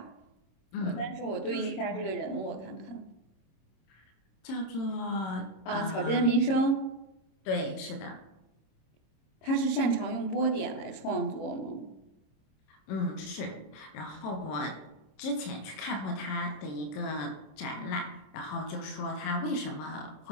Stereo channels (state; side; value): late; right; 27 ms